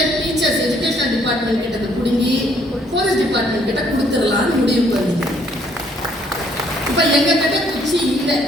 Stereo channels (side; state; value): both; normal; correlation 0.65